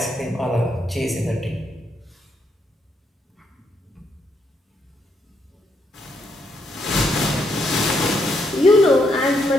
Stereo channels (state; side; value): normal; both; correlation 0.76